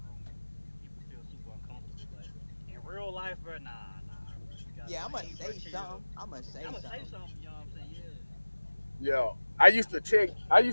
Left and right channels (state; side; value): inverted; both; correlation -1.00